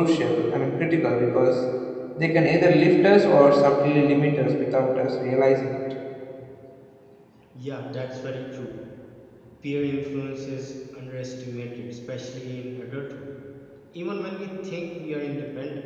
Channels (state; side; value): identical; both; correlation 1.00